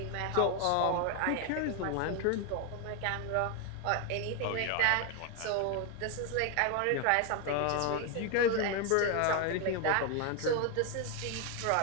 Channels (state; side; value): different; both; correlation 0.01